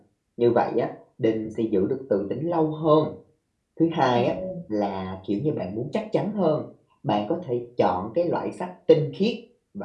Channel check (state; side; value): identical; both; correlation 1.00